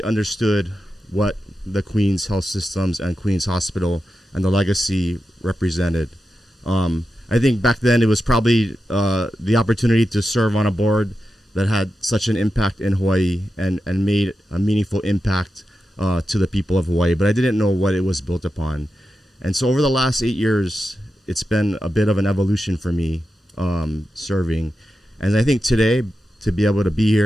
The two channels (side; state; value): both; normal; correlation 0.90